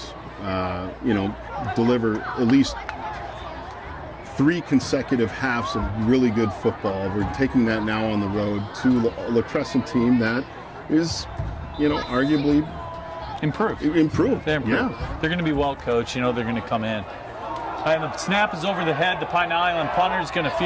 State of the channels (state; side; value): identical; both; correlation 1.00